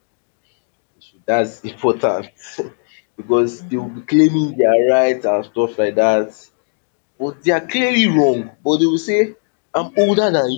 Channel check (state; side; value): silent; right; 68 dB below the other